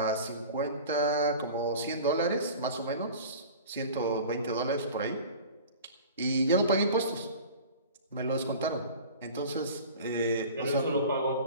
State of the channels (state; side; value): inverted; both; correlation -0.40